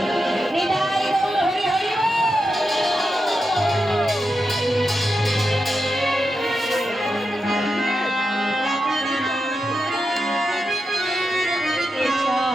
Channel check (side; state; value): both; normal; correlation 0.88